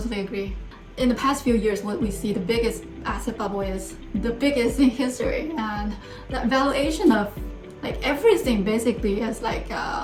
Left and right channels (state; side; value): identical; both; correlation 1.00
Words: agree. In the past few years, what we see, the biggest asset bubble is the biggest in history, and the valuation of like everything basically is like